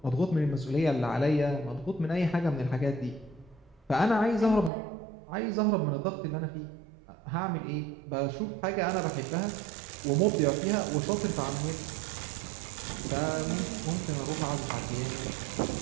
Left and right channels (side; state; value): left; drops out; at 4.7 s